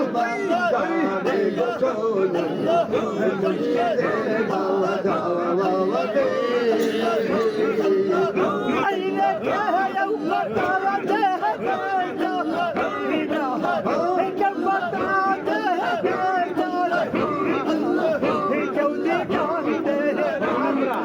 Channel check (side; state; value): both; identical; correlation 1.00